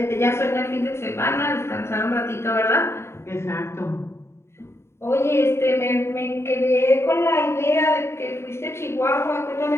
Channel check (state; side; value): late; right; 0.13 ms